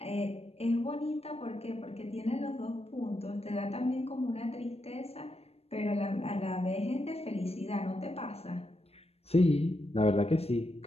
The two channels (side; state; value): right; late; 0.29 ms